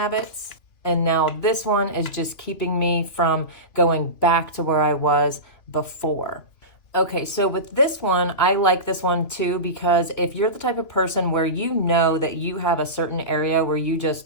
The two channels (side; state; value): right; late; 2.8 ms